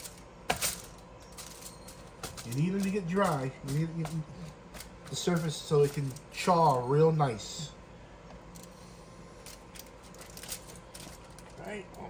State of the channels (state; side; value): identical; both; correlation 1.00